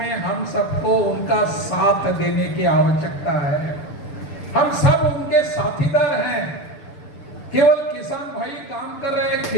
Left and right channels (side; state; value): right; late; 6.8 ms